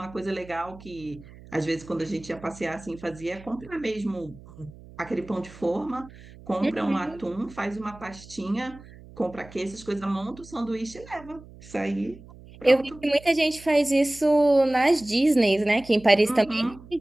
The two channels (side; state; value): right; noise; hum, 20 dB below the sound